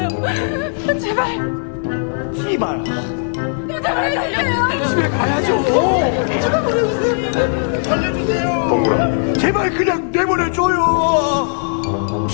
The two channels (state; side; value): silent; right; digital silence